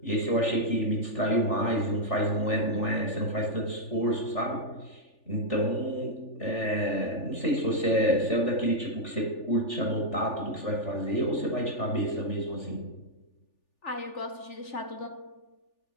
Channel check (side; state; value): right; late; 3.4 ms